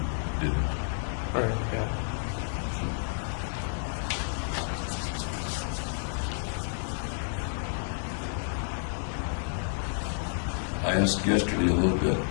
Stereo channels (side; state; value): right; silent; 58 dB below the other